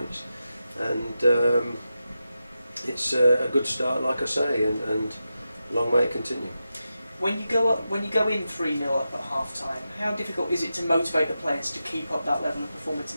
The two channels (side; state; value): both; inverted; correlation -0.90